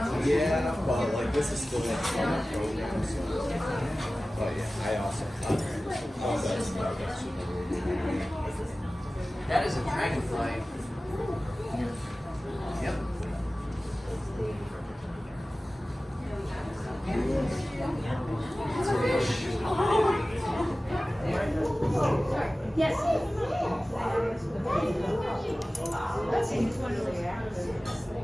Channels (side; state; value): both; normal; correlation 0.97